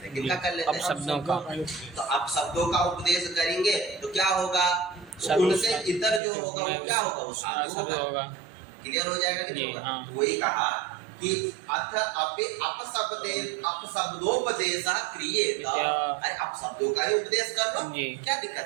हैं। किनका कर लेते हैं? शब्दों का। तो अब शब्दों का उपदेश करेंगे तो क्या होगा? उनसे इतर जो होगा वो क्या होगा? वो साधु होगा। क्लियर हो जाएगा कि नहीं होगा? वही कहा कि अथ अपि अपशब्दोपदेशः क्रियेत, अरे आप शब्दों का ही उपदेश कर लो, क्या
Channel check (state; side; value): drops out; left; at 6.2 s